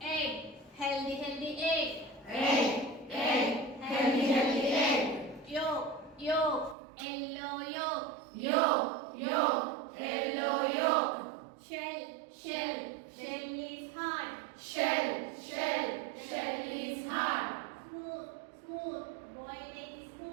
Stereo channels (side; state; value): left; drops out; at 6.8 s